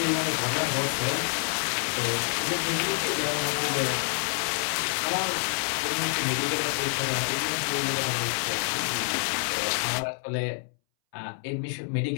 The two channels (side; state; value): right; silent; 60 dB below the other